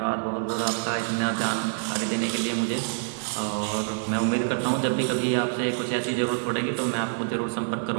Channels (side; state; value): left; silent; digital silence